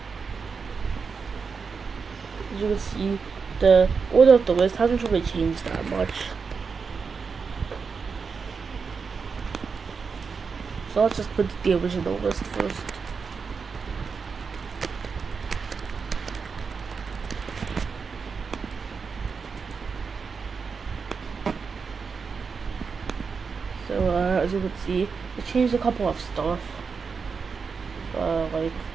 as you can see, the order of the list hasn't really changed that much. So let's just put the original list first. So, as you can see, it changed a couple of stuff. Like,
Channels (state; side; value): quieter; left; 5.4 dB